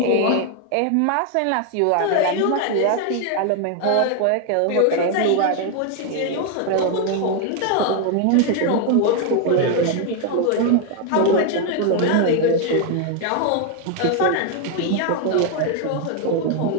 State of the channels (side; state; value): both; different; correlation 0.01